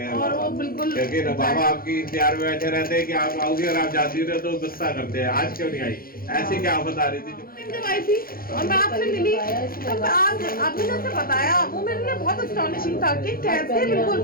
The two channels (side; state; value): right; late; 0.42 ms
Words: हैं, और वो बिल्कुल, क्योंकि बाबा आपकी इंतजार में बैठे रहते हैं कि आप आओगे, और आप जाती रहे तो गुस्सा करते हैं, आज क्यों नहीं आई, ऐसी क्या आफत आ रही थी जब आई थी और मैं आपसे मिली, तो आज आपने जैसे बताया, वो मेरे लिए बहुत अस्टॉनिशिंग था कि कैसे, बिल्कुल